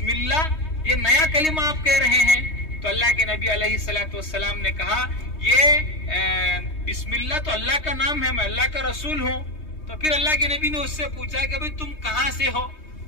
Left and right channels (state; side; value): late; right; 3.2 ms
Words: اللہ، یہ نیا کلمہ آپ کہہ رہے ہیں۔ تو اللہ کے نبی علیہ الصلوۃ والسلام نے کہا یہ بسم اللہ تو اللہ کا نام ہے، میں اللہ کا رسول ہوں۔ تو پھر اللہ کے نبی نے اس سے پوچھا کہ بھئی تم کہاں سے ہو؟